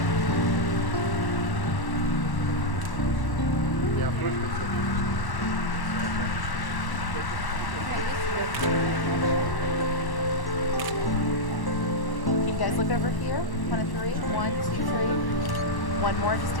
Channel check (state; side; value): late; right; 1.1 ms